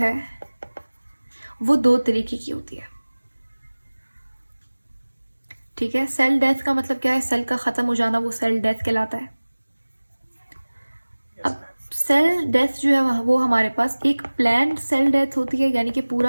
वो दो तरीके की होती है। ठीक है, सेल डेथ का मतलब क्या है? सेल का ख़त्म हो जाना, वो सेल डेथ कहलाता है। अब सेल डेथ जो है वो हमारे पास एक प्लान्ड सेल डेथ होती है, यानी कि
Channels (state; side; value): inverted; both; correlation -1.00